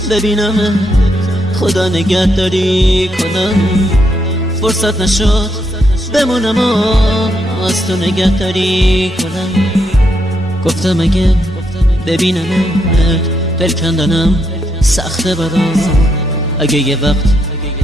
ببینم خدا نگهداری کنم، فرصت نشد بمونم و از تو نگهداری کنم. گفتم اگه ببینمت دل کندنم سخته برام، اگه یه وقت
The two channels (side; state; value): both; normal; correlation 0.78